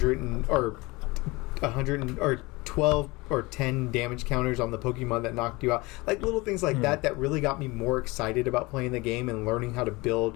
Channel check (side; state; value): right; quieter; 23.4 dB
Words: 12 or 10 damage counters on the Pokemon that knocked you out. Like little things like that really got me more excited about playing the game and learning how to